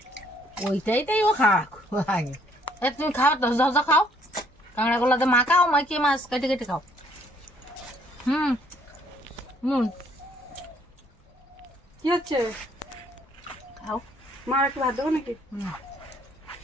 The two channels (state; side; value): normal; both; correlation 0.65